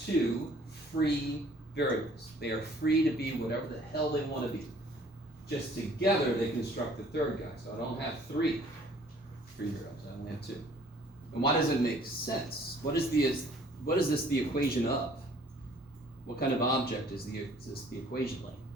2 free variables? They are free to be whatever the hell they want to be. Just together they construct the third guy. So I don't have 3 free variables, I only have 2. And why does it make sense? What is this the equation of? What kind of object is this the equation like?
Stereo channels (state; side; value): normal; both; correlation 0.56